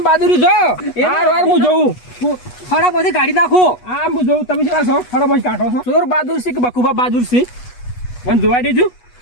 બહાદુરી જો વાર વાર હું જોઉં ફળા બધી કાઢી નાખું આ હું જોઉં તમે શું છો ફળા બધી કાઢો છો ચોર બહાદુર છે કે બકુબા બહાદુર છે મને જોવા દેજો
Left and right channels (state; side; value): late; right; 8.2 ms